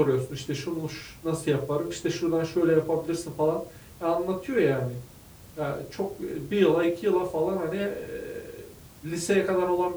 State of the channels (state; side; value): identical; both; correlation 1.00